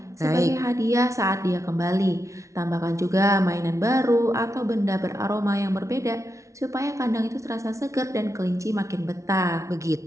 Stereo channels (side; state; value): left; late; 0.14 ms